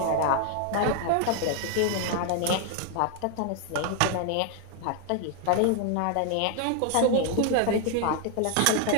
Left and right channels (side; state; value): both; different; correlation 0.00